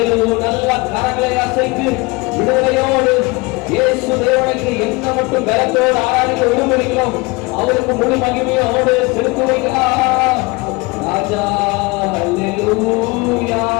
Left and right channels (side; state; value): right; quieter; 25.1 dB